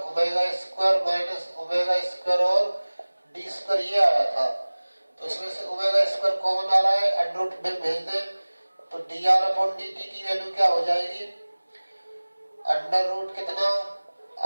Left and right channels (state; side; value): inverted; both; correlation -1.00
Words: omega square minus omega square और डी स्क्वायर ये आया था। तो इसमें से ओमेगा स्क्वायर कॉमन आ रहा है, अंडर रूट में भेज दें तो dr/dt की वैल्यू क्या हो जाएगी, अंडर रूट कितना,